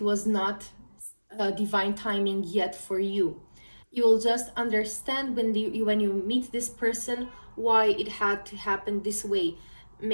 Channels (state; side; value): inverted; both; correlation -1.00